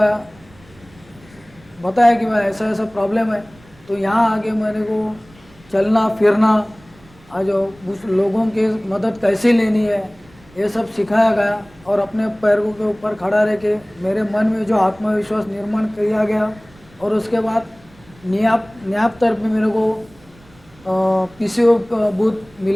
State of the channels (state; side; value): noise; right; rumble, 27 dB below the sound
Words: बताया कि मैं ऐसा ऐसा प्रॉब्लम है, तो यहाँ आके मेरे को चलना फिरना आज उस लोगों की मदद कैसे लेनी है ये सब सिखाया गया, और अपने पैरों के ऊपर खड़ा रह के मेरे मन में जो आत्मविश्वास निर्माण किया गया, और उसके बाद न्याप तरफ में मेरे को पीसीओ बूथ